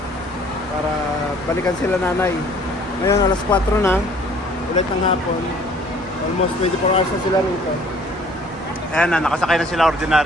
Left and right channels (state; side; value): normal; both; correlation 0.55